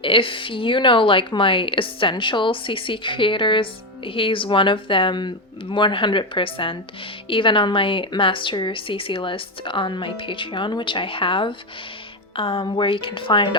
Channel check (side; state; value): both; normal; correlation 0.11